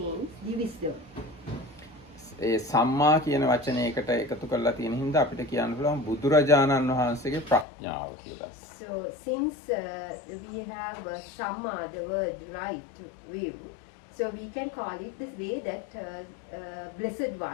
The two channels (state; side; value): drops out; right; at 7.7 s